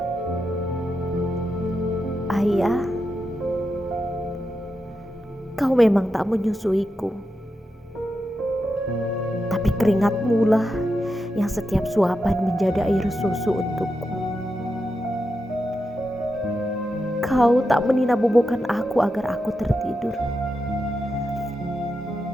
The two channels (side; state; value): both; normal; correlation 0.87